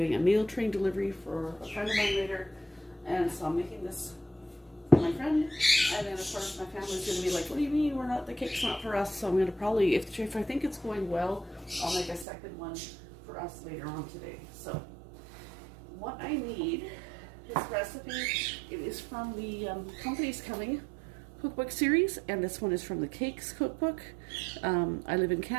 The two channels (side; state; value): left; drops out; at 12.2 s